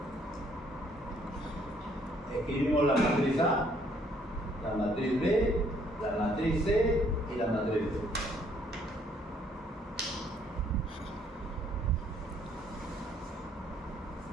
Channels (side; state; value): both; normal; correlation 0.65